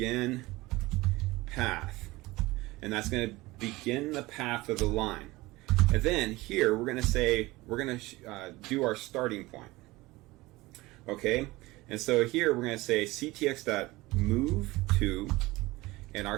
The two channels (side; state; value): left; quieter; 20.4 dB